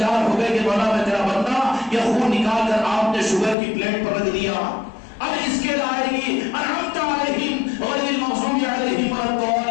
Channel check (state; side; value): drops out; right; at 3.6 s